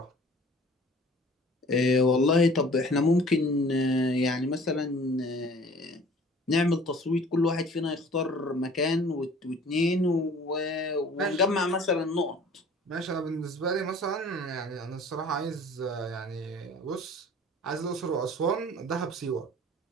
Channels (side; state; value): both; normal; correlation 0.49